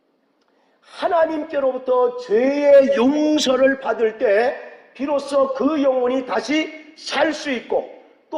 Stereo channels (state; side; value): identical; both; correlation 1.00